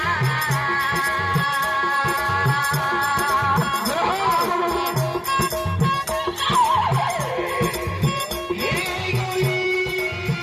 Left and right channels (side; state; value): both; identical; correlation 1.00